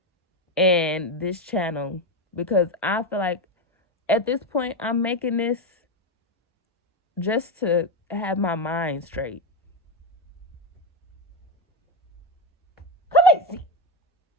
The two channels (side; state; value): both; normal; correlation 0.11